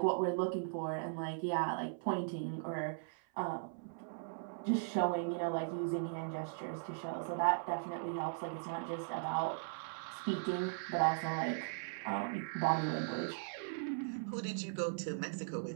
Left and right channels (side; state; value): left; silent; 52 dB below the other